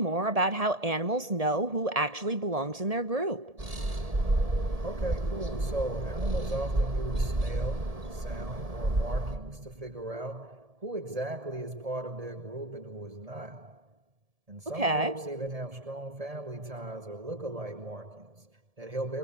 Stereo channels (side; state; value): left; late; 1.7 ms